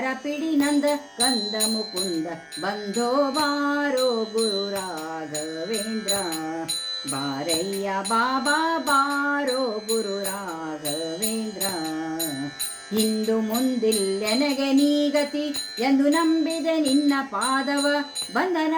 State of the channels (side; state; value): both; identical; correlation 1.00